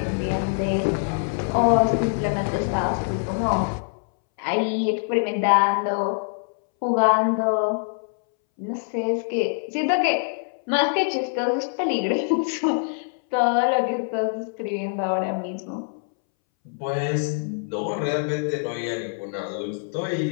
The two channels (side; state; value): right; silent; 62 dB below the other